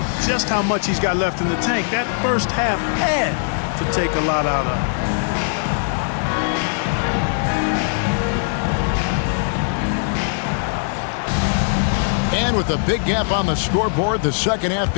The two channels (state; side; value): silent; right; 66 dB below the other